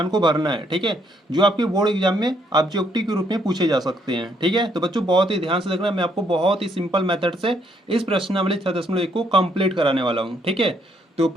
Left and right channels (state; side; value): normal; both; correlation 0.71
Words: को भरना है। ठीक है, जो आपके बोर्ड एग्जाम में ऑब्जेक्टिव के रूप में पूछे जा सकते हैं। ठीक है, तो बच्चों बहुत ही ध्यान से देखना, मैं आपको बहुत ही सिंपल मेथड से इस प्रश्नावली 6.1 को कंप्लीट कराने वाला हूँ। ठीक है, तो